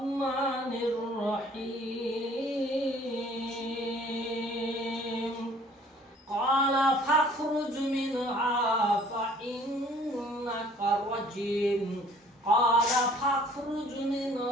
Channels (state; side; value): normal; both; correlation 0.55